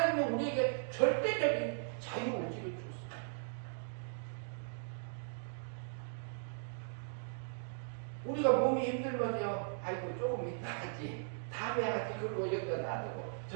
우리에게 절대적인 자유의지를 줬습니다. 우리가 몸이 힘들면요, 아이고 조금 이따 하지, 다음에 하지, 그리고 여기다 놔두고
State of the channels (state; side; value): silent; left; digital silence